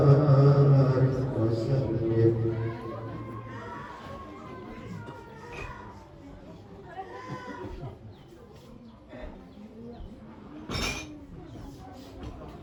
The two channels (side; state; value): both; identical; correlation 1.00